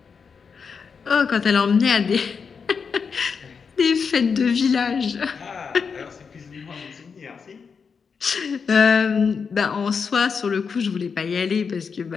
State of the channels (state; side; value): quieter; right; 5.8 dB